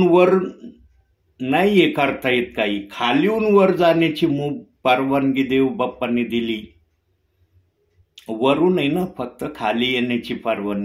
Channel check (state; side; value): identical; both; correlation 1.00